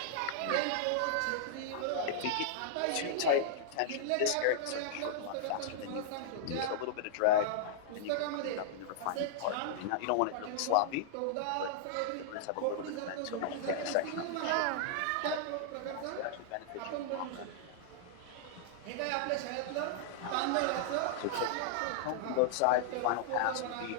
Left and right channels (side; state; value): both; different; correlation -0.01